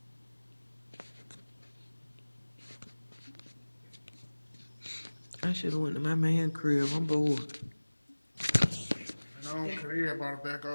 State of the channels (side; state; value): both; inverted; correlation -1.00